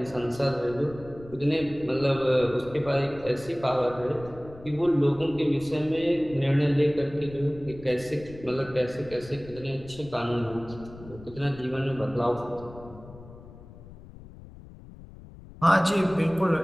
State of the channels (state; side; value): noise; left; rumble, 18 dB below the sound